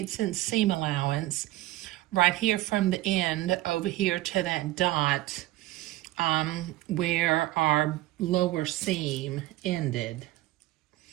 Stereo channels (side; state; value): left; quieter; 16.9 dB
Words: inch seam allowance right here from the end over here to that dot where our lower seam ended.